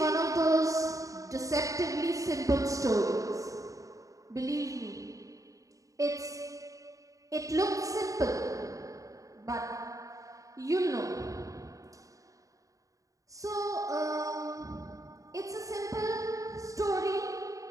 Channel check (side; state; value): left; late; 0.16 ms